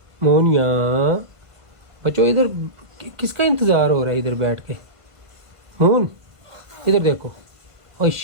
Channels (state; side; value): late; left; 1.6 ms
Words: मून यहाँ। बच्चों इधर किसका इंतजार हो रहा है इधर बैठ के? मून, इधर देखो। ओ